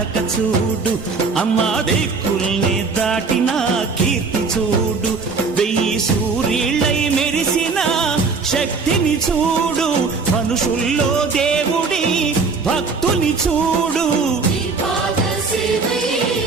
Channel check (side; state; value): left; quieter; 4.5 dB